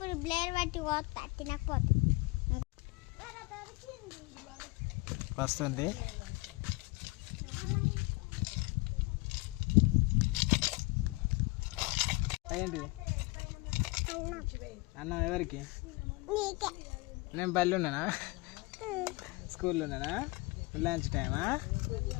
బ్లేడ్ పట్టి పోతా తినకపోతే వస్తుంది. ఏంటి అన్నం ఎవరికి? నేను బళ్ళు ఉన్నానా? స్కూల్లో ఉన్నానా? లంచ్ టైమా?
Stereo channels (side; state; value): right; quieter; 24.5 dB